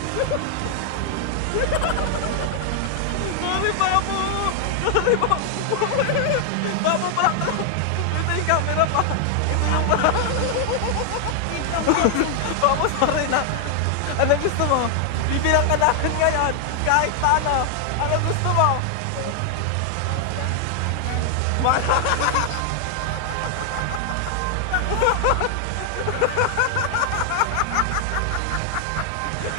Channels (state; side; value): different; both; correlation 0.00